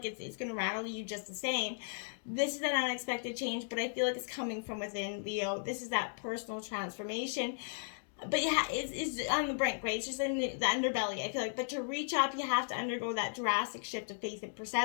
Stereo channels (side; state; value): right; silent; digital silence